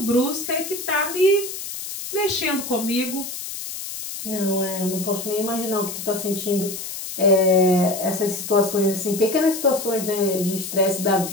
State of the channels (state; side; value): noise; left; hiss, 8 dB below the sound